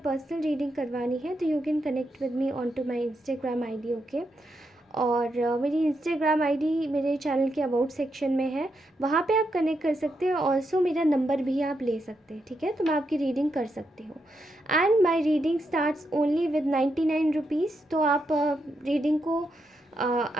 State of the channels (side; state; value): both; normal; correlation 0.82